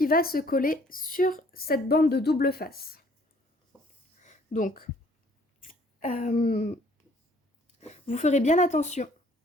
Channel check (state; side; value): normal; both; correlation 0.59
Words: va se coller sur cette bande de double face. Donc, vous ferez bien attention